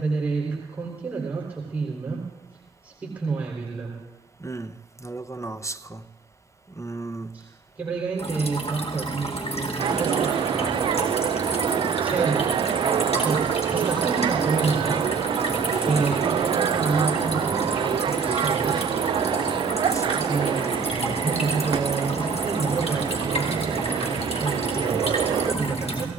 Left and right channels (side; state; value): left; quieter; 5.2 dB